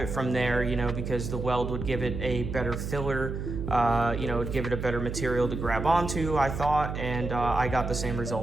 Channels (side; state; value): right; noise; hum, 5 dB below the sound